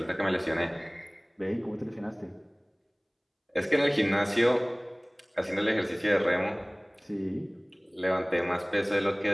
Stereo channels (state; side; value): identical; both; correlation 1.00